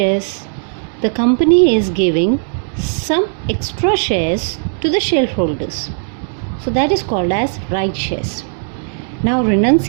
The company is giving some extra shares to the shareholders. So that is called as right shares. Now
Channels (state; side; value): silent; left; digital silence